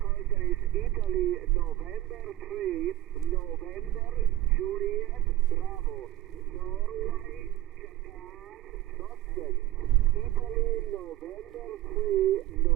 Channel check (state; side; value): quieter; left; 15.0 dB